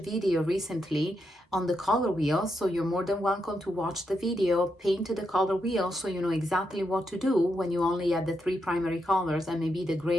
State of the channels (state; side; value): normal; both; correlation 0.82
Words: recently on the color wheel, so you're more than welcome to watch the video, paint the color wheel so you know exactly what to do when you only have the three primary colors and maybe the